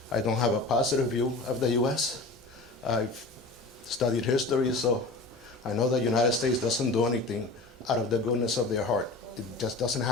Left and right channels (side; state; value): right; quieter; 3.2 dB